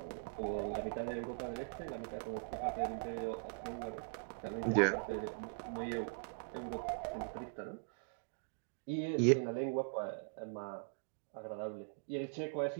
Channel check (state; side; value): silent; left; digital silence